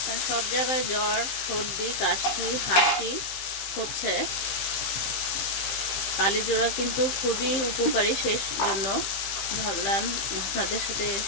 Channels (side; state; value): right; late; 15 ms